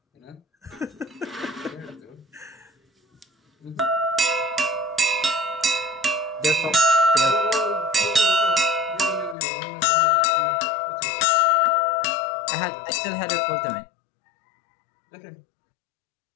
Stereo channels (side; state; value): right; drops out; at 9.3 s